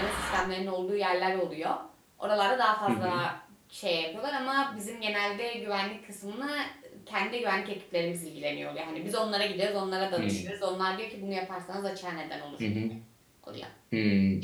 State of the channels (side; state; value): both; identical; correlation 1.00